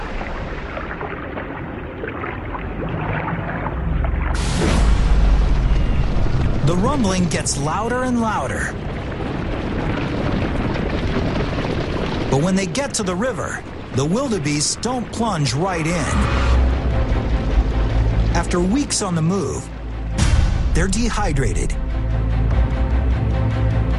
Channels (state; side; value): identical; both; correlation 1.00